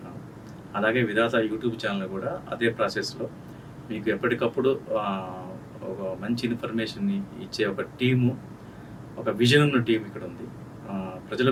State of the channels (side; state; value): both; identical; correlation 1.00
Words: అలాగే విధాత యూట్యూబ్ ఛానల్ కూడా అదే ప్రాసెస్లో మీకు ఎప్పటికప్పుడు ఒక మంచి ఇన్ఫర్మేషన్ని ఇచ్చే ఒక టీము, ఒక విజన్ ఉన్న టీం ఇక్కడ ఉంది. ప్రజల